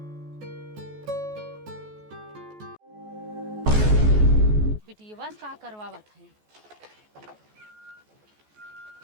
बिटिया का करवावत है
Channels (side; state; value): left; late; 14 ms